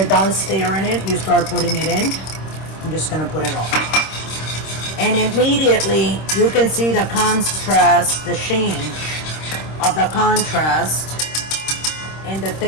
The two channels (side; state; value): right; late; 26 ms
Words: done stirring it, you start putting it in. I'm just gonna put it all, and immediately you can see the contrast, the change of the contrast and the